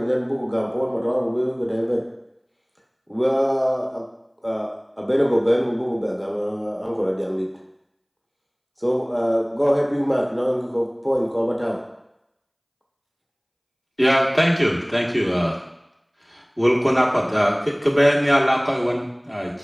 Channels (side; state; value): both; identical; correlation 1.00